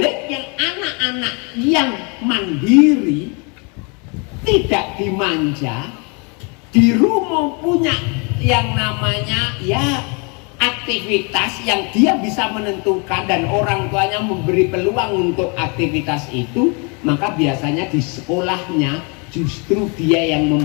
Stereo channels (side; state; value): right; quieter; 33.2 dB